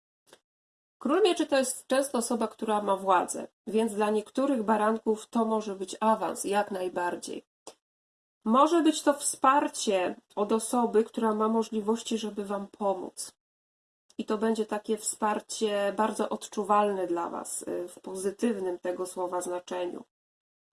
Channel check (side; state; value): both; identical; correlation 1.00